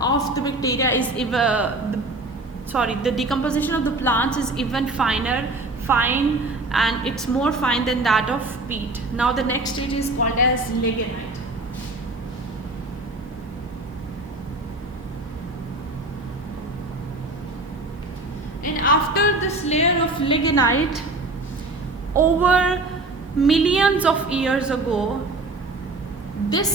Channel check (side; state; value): left; quieter; 3.0 dB